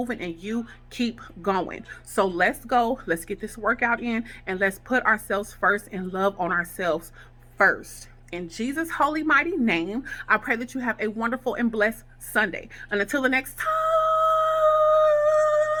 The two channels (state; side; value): identical; both; correlation 1.00